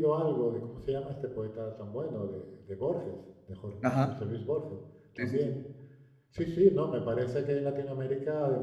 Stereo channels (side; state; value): both; identical; correlation 1.00